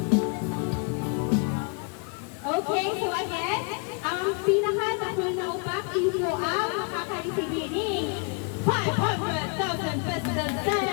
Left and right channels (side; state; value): right; quieter; 36.9 dB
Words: Okay, so again, ang pinaka-takol na upak, iyo po ang makaka-receive ng 500,000 pesos